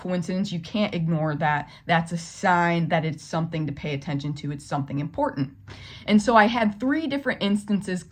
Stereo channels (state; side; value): identical; both; correlation 1.00